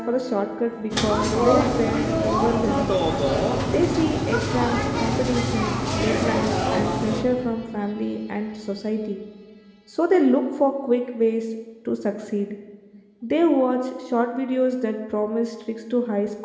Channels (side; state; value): both; identical; correlation 1.00